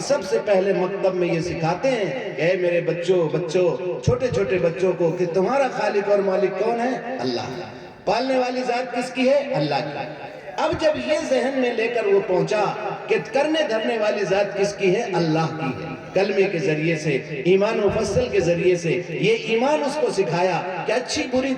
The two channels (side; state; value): both; identical; correlation 1.00